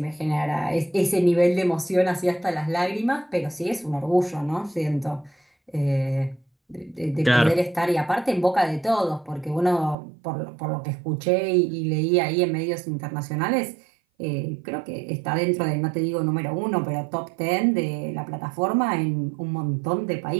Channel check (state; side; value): drops out; left; at 10.0 s